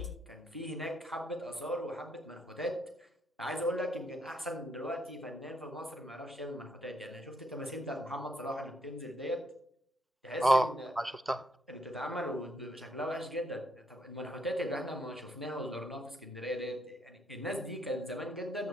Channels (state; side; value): normal; both; correlation 0.74